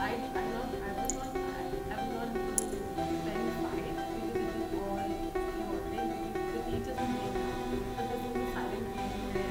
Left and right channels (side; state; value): both; identical; correlation 1.00